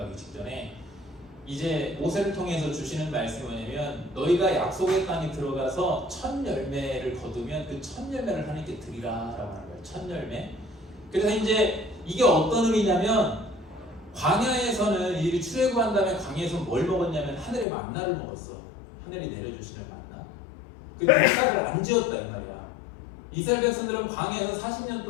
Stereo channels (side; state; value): right; drops out; at 17.7 s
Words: 직전에 이제 모세를 통해서 주시는 말씀이 뭐냐면 너희가 약속의 땅에 들어가서 첫 열매를 거두면 그 첫 열매를 하나님께 드리라 라고 하는 거예요. 첫 열매. 그래서 이제 이게 어떤 의미냐면 광야에서는 이들이 출애굽한 다음에 광야에서 뭘 먹었냐면 하늘의 만나를 먹었어. 하늘이 내려주시는 만나. 그 농사를 안 지었다 이 말이야. 이스라엘 백성들은 광야에서 40년